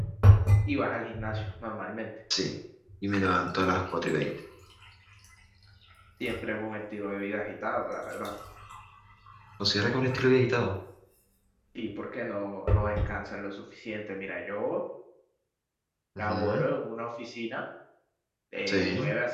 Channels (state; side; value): identical; both; correlation 1.00